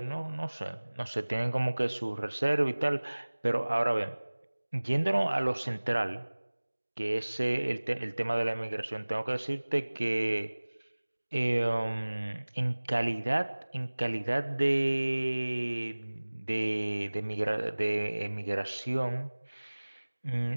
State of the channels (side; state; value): both; inverted; correlation -1.00